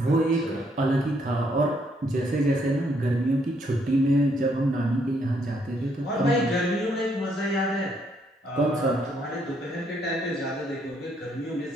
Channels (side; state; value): both; normal; correlation 0.71